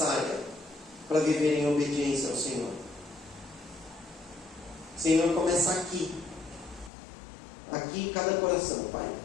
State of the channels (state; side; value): drops out; right; at 6.9 s